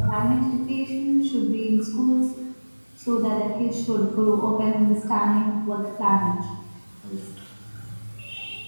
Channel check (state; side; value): inverted; both; correlation -1.00